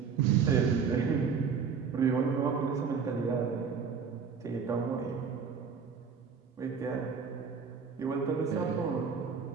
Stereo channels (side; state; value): left; quieter; 6.0 dB